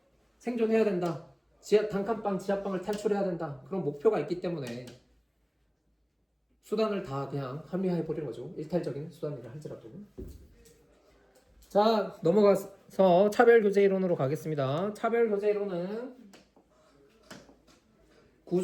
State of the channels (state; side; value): identical; both; correlation 1.00